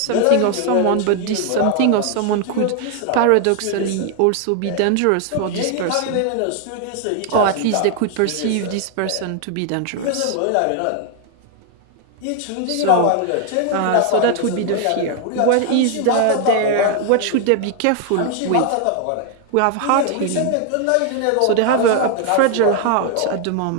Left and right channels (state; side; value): different; both; correlation 0.00